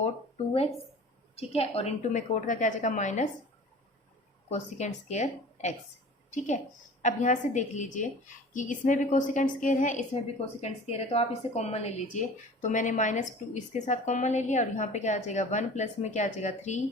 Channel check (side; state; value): both; normal; correlation 0.42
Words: टू एक्स। ठीक है, और इंटू में कोट का क्या आ जाएगा, माइनस कोसिकेंट स्क्वायर एक्स। ठीक है, अब यहाँ से देख लीजिए कि इसमें भी कोसिकेंट स्क्वायर है, इसमें भी कोसिकेंट स्क्वायर है, तो आप इसे कॉमन ले लीजिए। तो मैंने माइनस टू इसके साथ कॉमन ले लिया, और यहाँ पे क्या आ जाएगा, वन प्लस में क्या आ जाएगा, थ्री